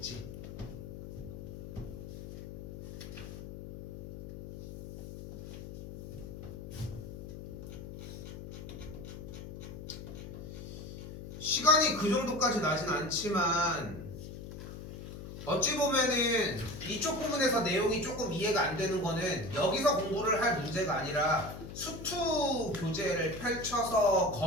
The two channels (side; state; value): left; noise; hum, 11 dB below the sound